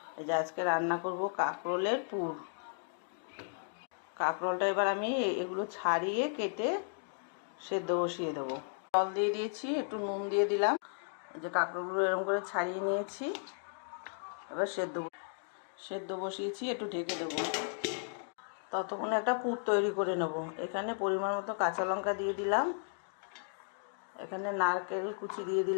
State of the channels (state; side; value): silent; right; digital silence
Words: এই যে আজকে রান্না করব কাঁকরোলের পুর। কাঁকরোলটা এবার আমি এগুলো ছাড়িয়ে কেটে সেদ্ধ বসিয়ে দেবো। জল দিয়ে দিয়েছি, একটু নুন দিয়ে দিলাম। এই যে কাঁকরোলগুলো এরকম করে ছাড়িয়ে নিয়েছি, এবার সেদ্ধ বসিয়েছি, একটু ঢেকে দেবো। ততক্ষণে একটা পুর তৈরি করে নেব। এখানে পরিমাণ মতো কাঁচা লঙ্কা দিয়ে দিলাম, এখানে নারকেল কুচি দিয়ে